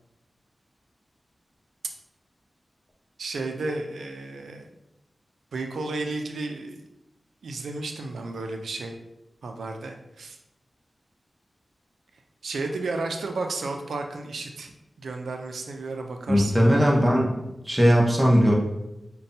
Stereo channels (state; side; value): normal; both; correlation 0.95